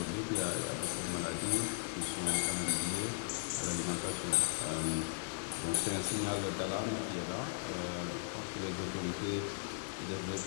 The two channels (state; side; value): silent; right; 53 dB below the other